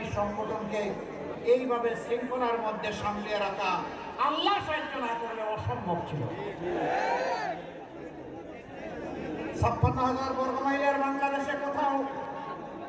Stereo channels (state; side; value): identical; both; correlation 1.00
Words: সংগঠনকে এইভাবে শৃঙ্খলার মধ্যে সামলিয়ে রাখা আল্লাহ সাহায্য না করলে অসম্ভব ছিল। 56,000 বর্গ মাইলের বাংলাদেশে কোথাও